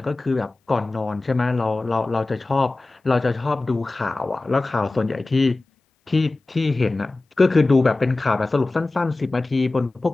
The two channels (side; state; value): right; quieter; 3.2 dB